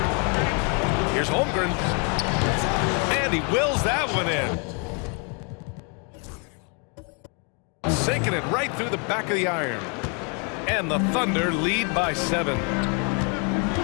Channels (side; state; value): right; quieter; 36.6 dB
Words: Here's Holmgren. And he wills that one in. Sinking it right through the back of the iron. And the Thunder lead by 7.